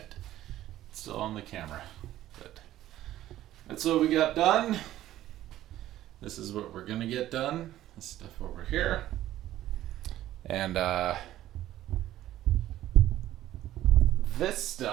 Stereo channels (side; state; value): left; quieter; 13.7 dB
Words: It's still on the camera. But that's what we got done. This is what we're gonna get done. This stuff over here. And this